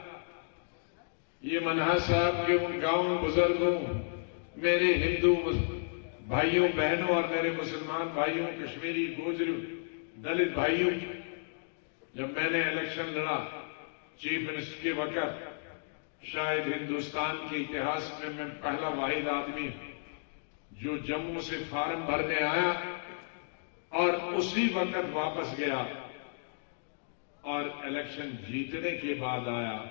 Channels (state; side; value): silent; right; digital silence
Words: یہ منہا صاحب کے ان گاؤں بزرگوں، میرے ہندو بھائیوں بہنوں اور میرے مسلمان بھائیوں، کشمیری گوجری دلت بھائیوں، جب میں نے الیکشن لڑا چیف منسٹر کے وقت، شاید ہندوستان کے اتہاس میں پہلا واحد آدمی جو جموں سے فارم بھرنے آیا اور اسی وقت واپس گیا اور الیکشن جیتنے کے بعد آیا.